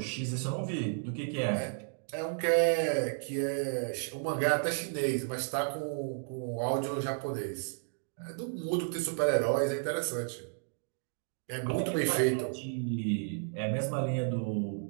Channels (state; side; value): silent; left; 56 dB below the other